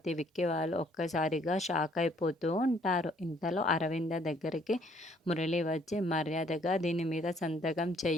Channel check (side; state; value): both; normal; correlation 0.63